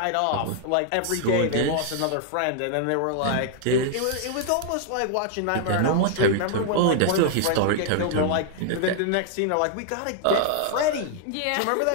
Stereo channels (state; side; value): different; both; correlation -0.01